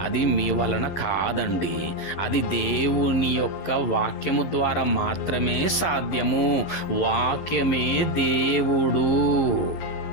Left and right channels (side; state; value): right; late; 11 ms